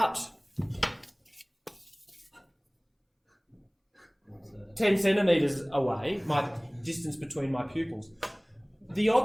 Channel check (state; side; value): identical; both; correlation 1.00